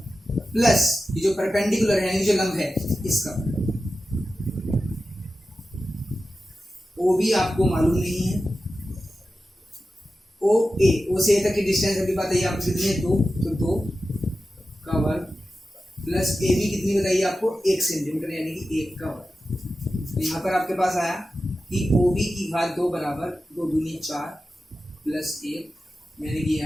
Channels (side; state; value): both; normal; correlation 0.93